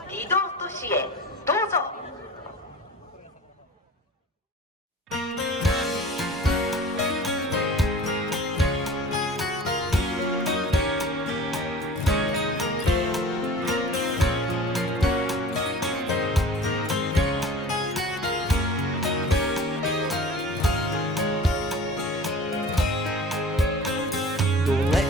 離島都市へどうぞ。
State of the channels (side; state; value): both; normal; correlation 0.41